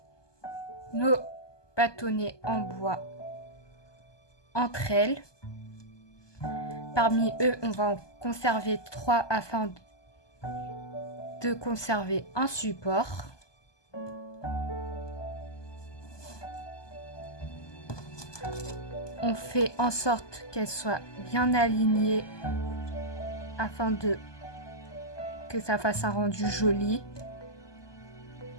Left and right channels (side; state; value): right; late; 1.2 ms